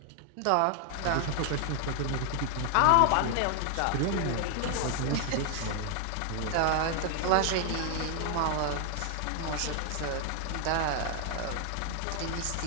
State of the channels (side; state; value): both; different; correlation 0.00